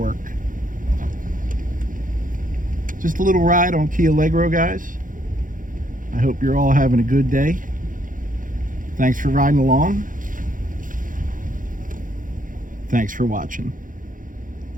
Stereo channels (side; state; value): left; late; 0.39 ms